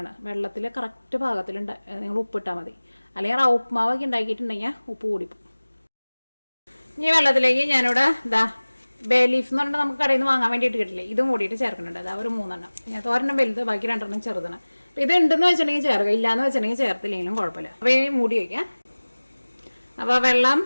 വെള്ളത്തിൽ കറക്റ്റ് പാകത്തിൽ നിങ്ങൾ ഉപ്പിട്ടാൽ മതി. അല്ലെങ്കിൽ റവ ഉപ്മാവൊക്കെ ഉണ്ടാക്കിയിട്ടുണ്ടെങ്കിൽ ഉപ്പ് കൂടിപ്പോകും. ഈ വെള്ളത്തിലേക്ക് ഞാനിവിടെ ബേ ലീഫ് എന്ന് പറഞ്ഞാൽ നമുക്ക് കടയിൽ നിന്ന് വാങ്ങാൻ വേണ്ടിയിട്ട് കിട്ടില്ലേ, ഇതും കൂടിയിട്ട് ചേർക്കുന്നുണ്ട്. ഒരു 3 എണ്ണം. ഞാൻ 1 വലുത്, ബാക്കി 2 ചെറുതാണ്. അപ്പോൾ ഇത് ഉണ്ടെന്ന് വെച്ചിട്ടുണ്ടെങ്കിൽ ചേർക്കുക, ഇല്ലയെന്ന് വെച്ചിട്ടുണ്ടെങ്കിൽ ചേർത്തില്ലെങ്കിലും കുഴപ്പമില്ല. അപ്പോൾ ഈ മൂടി വയ്ക്കാം. അപ്പോൾ വെള്ളം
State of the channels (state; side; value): inverted; both; correlation -1.00